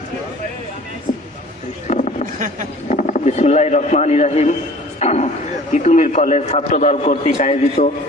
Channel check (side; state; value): both; normal; correlation 0.47